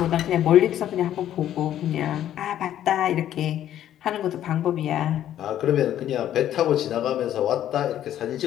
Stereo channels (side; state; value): right; quieter; 11.5 dB